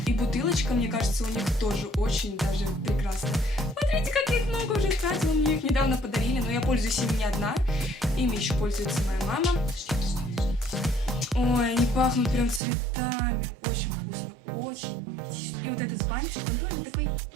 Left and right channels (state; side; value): drops out; left; at 12.6 s